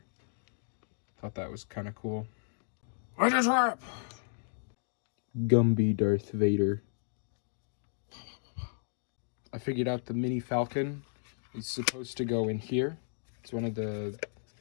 Thought that was kind of cool. I just rap! Gumby Darth Vader. I figured out the Mini Falcon is supposed to go in here. It's one of the,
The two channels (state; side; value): silent; right; digital silence